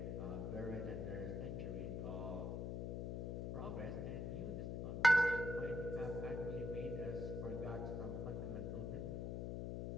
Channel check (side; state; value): left; noise; hum, 2 dB below the sound